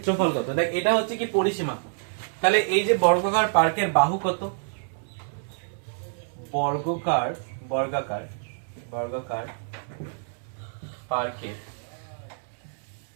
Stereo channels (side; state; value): left; silent; digital silence